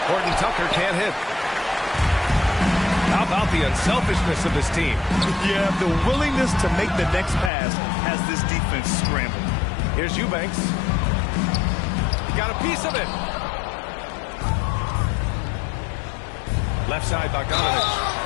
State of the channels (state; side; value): drops out; right; at 7.5 s